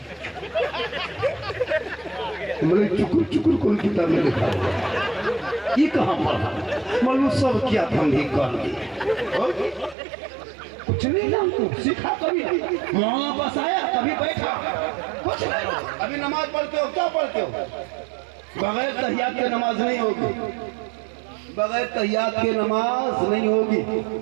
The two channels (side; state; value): left; drops out; at 10.0 s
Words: मैंने चुकुर चुकुर कौन किताब में लिखा, ये कहाँ पढ़ा? मालूम सब किया था, हम भी कर लिए। कुछ नहीं जानते, सीखा कभी? वहाँ पास आया कभी बैठा, कुछ नहीं। अभी नमाज पढ़ते हो, क्या पढ़ते हो? बगैर तहियात के नमाज नहीं होगी, बगैर तहियात के नमाज नहीं होगी।